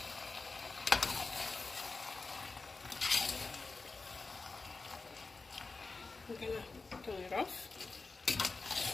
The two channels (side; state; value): right; quieter; 3.9 dB